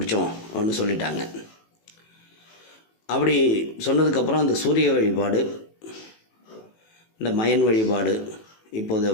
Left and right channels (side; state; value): right; late; 18 ms